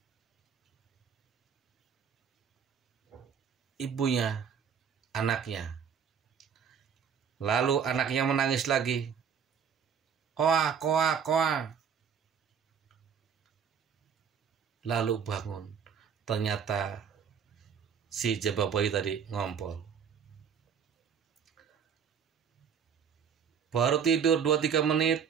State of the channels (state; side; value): quieter; left; 7.2 dB